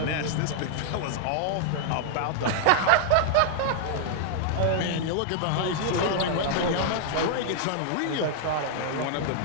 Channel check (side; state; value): both; different; correlation -0.01